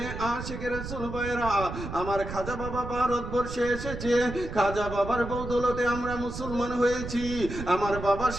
আশিকের রাসূল ভাইরা আমার খাজা বাবা ভারতবর্ষে এসেছে। খাজা বাবার বদৌলতে আমরা মুসলমান হয়েছি। আমার বাবা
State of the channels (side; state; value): right; noise; rumble, 8 dB below the sound